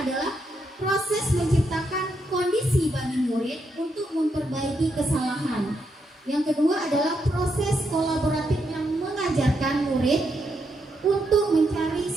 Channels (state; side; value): normal; both; correlation 0.80